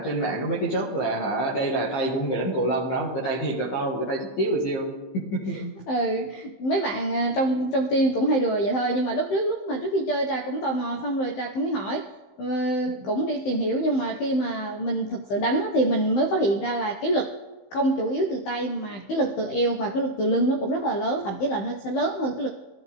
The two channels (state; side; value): late; right; 15 ms